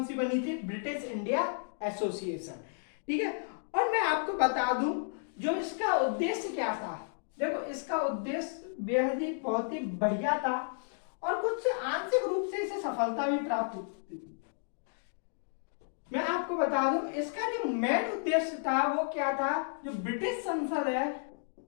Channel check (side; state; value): right; silent; digital silence